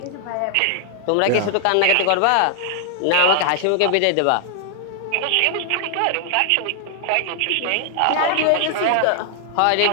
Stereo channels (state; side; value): different; both; correlation 0.00